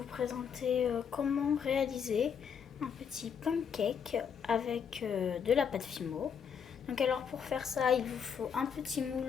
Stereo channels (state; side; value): quieter; right; 7.2 dB